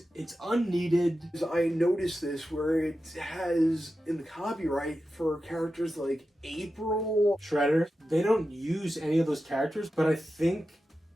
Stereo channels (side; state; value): both; normal; correlation 0.91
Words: It's unneeded. I noticed this where it has in the copyright for characters like April. Shredder. They don't use any of those characters, but I think